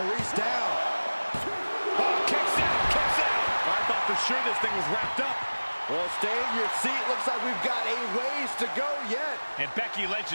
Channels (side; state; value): both; inverted; correlation -1.00